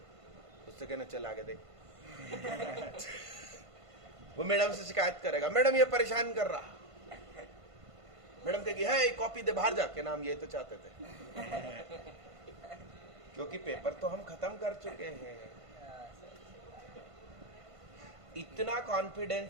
उससे कहना चल आगे देख। वो मैडम से शिकायत करेगा, मैडम ये परेशान कर रहा। मैडम कहेगी है कॉपी दे बाहर जाके, नाम ये तो चाहते थे। क्योंकि पेपर तो हम खत्म कर चुके हैं। इतना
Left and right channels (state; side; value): late; left; 1.5 ms